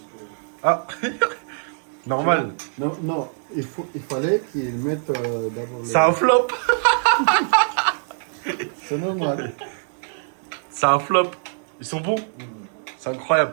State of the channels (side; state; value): left; silent; digital silence